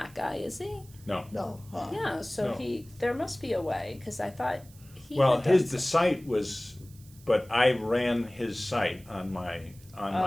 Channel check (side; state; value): right; noise; hiss, 24 dB below the sound